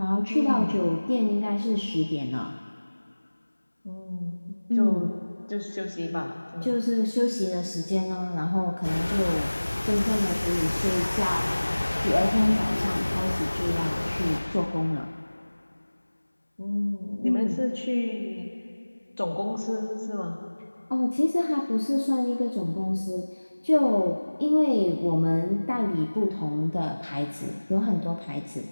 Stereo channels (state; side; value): inverted; both; correlation -1.00